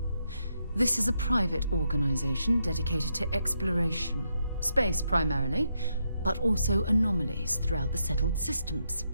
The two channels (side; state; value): both; inverted; correlation -0.80